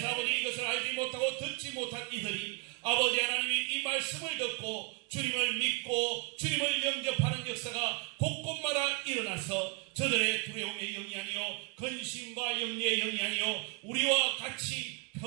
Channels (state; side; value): quieter; left; 30.6 dB